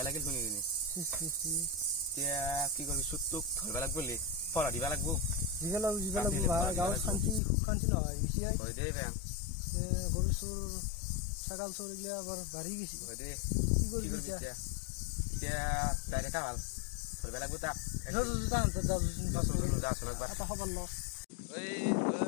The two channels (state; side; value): drops out; right; at 7.4 s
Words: লাগিল শুনি কিনি এতিয়া কি কৰিবি চুটটোক ধৰিব লাগিব বুলি পলা দিবা লাগিব গাঁৱত শান্তি নহয় হয় দেই বেয়া গৰুচুৰ ছাগাল চোৰ এইগিলা বৰ বাঢ়ি গৈছে কি কৰিবি এতিয়া ডাইৰেক্ট ভাল ধৰিব লাগিব তাক